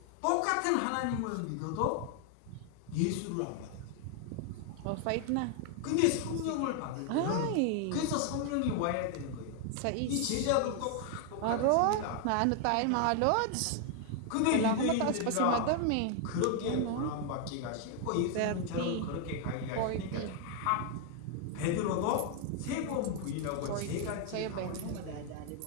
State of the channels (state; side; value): different; both; correlation 0.00